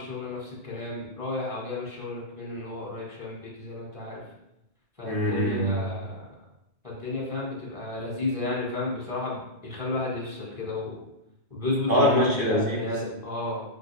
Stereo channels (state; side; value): late; left; 2.5 ms